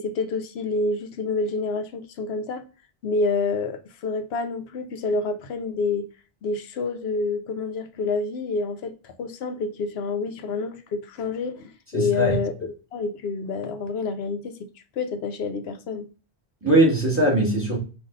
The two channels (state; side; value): normal; both; correlation 0.17